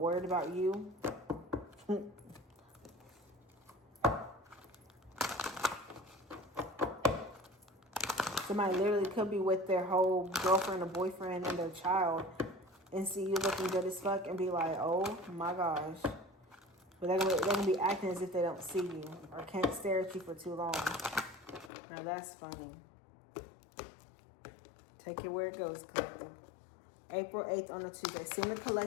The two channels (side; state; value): right; drops out; at 21.7 s